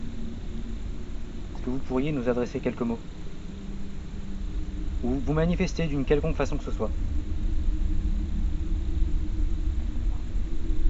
Est-ce que vous pourriez nous adresser quelques mots? Ou vous manifester d'une quelconque façon que ce soit?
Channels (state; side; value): identical; both; correlation 1.00